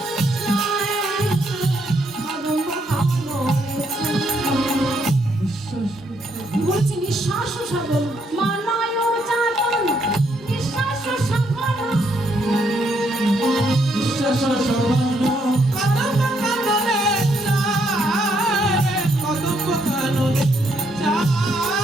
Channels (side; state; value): both; normal; correlation 0.73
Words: বলছি নিঃশ্বাস সাগর মানায় চাতন নিঃশ্বাস সাগর নিঃশ্বাস সঘন